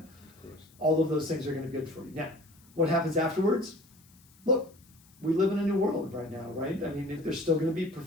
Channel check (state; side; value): noise; left; hiss, 28 dB below the sound